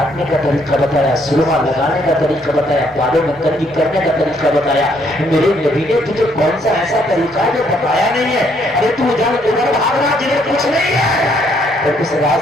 کا طریقہ بتایا, سرما لگانے کا طریقہ بتایا, بالوں میں کنگھی کرنے کا طریقہ بتایا. میرے نبی نے تجھے کون سا ایسا طریقہ ہے جو بتایا نہیں ہے؟ ارے تو جان ادھر بھاگ رہا جدھر کچھ نہیں ہے, اور اس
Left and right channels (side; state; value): both; normal; correlation 0.69